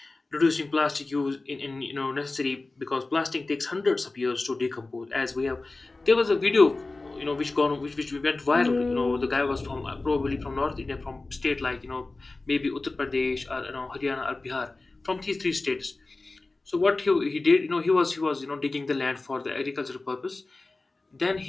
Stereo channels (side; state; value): right; quieter; 3.3 dB